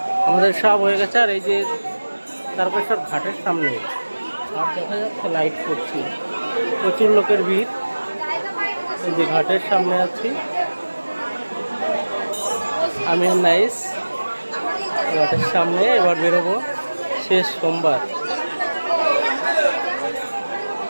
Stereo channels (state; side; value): inverted; both; correlation -1.00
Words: আমাদের সব হয়ে গেছে। আর এই যে তারকেশ্বর ঘাটের সামনে আর দেখা যাচ্ছে লাইট করছি, প্রচুর লোকের ভিড়। এই যে ঘাটের সামনে আছি আমি আর নাইস, ঘাটের সামনে। এবার বেরোবো, শেষ সোমবার।